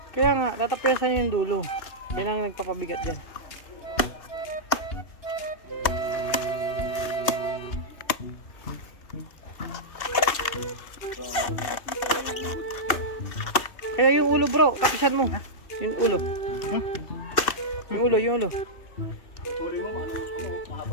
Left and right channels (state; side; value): late; right; 2.6 ms